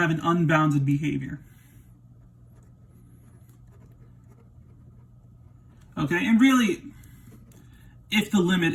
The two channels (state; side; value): identical; both; correlation 1.00